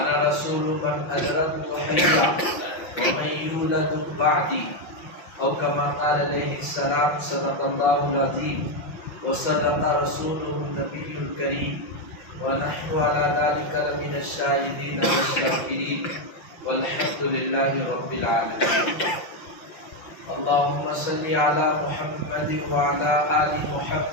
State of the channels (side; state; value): right; late; 5.8 ms